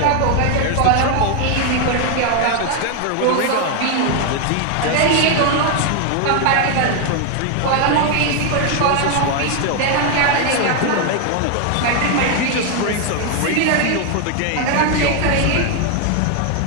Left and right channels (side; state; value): both; different; correlation 0.01